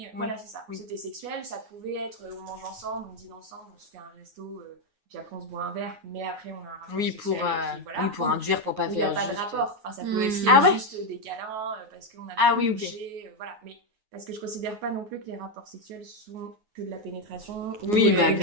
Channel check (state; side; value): late; left; 9.5 ms